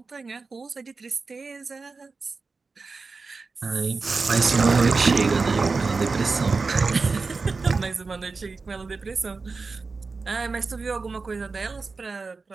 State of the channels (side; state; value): left; quieter; 4.2 dB